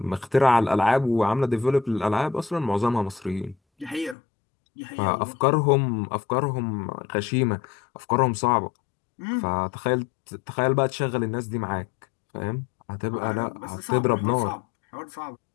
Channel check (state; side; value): drops out; right; at 4.2 s